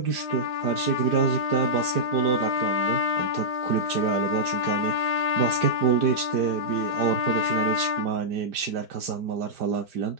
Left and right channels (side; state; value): left; late; 4.5 ms